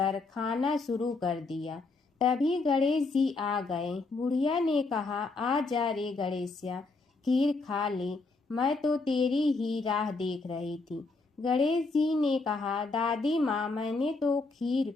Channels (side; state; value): right; quieter; 3.7 dB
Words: खाना शुरू कर दिया। तभी गणेश जी आ गए। बुढ़िया ने कहा, आ जा रे गणेशिया, खीर खा ले, मैं तो तेरी ही राह देख रही थी। गणेश जी ने कहा, दादी माँ, मैंने तो खीर